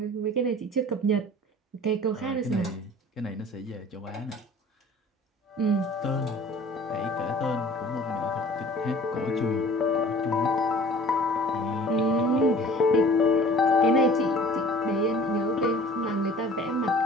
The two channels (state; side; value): normal; both; correlation 0.47